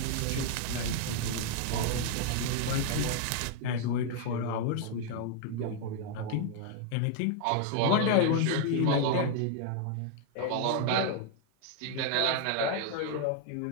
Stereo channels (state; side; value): different; both; correlation 0.00